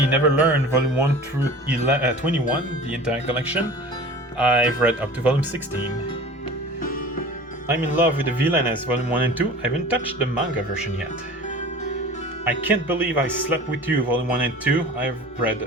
Never Learn, Volume 1 through 21, the entire collection. I've read up to Volume 16. I'm in Love with the Villainess, Volume 1 and 2. I haven't touched the manga version yet. I Can't Believe I Slept With You, Volume 1 and 2. I've read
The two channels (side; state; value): both; normal; correlation 0.40